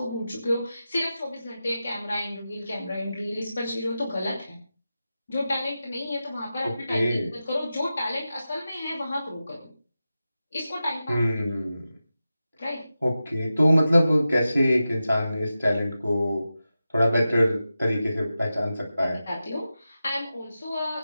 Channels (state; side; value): inverted; both; correlation -0.92